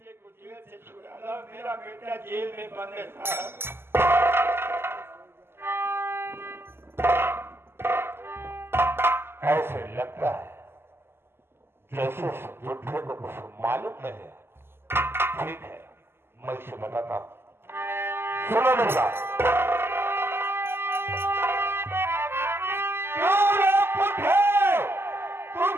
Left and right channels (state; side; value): late; left; 0.12 ms